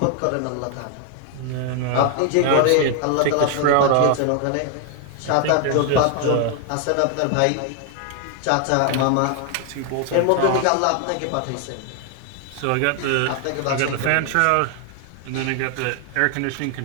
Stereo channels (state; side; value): different; both; correlation 0.00